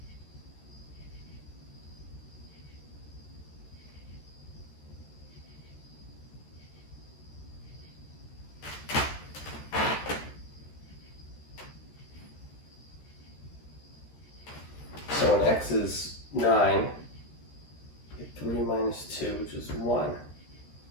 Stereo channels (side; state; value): right; late; 13 ms